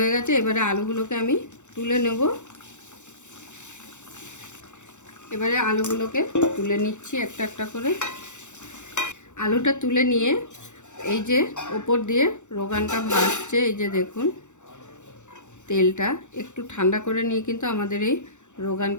হয়ে গেছে। এবারে আলুগুলোকে আমি তুলে নেব। এবারে আলুগুলোকে তুলে নিচ্ছি একটা একটা করে। আলুটা তুলে নিয়ে এই যে ওপর দিয়ে রোগানটা ভাসছে, এই যে দেখুন তেলটা একটু ঠান্ডা করে নিয়ে কিন্তু আমাদের এই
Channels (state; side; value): late; right; 0.84 ms